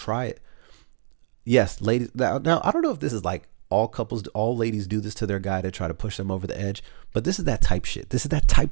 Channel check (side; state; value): left; silent; digital silence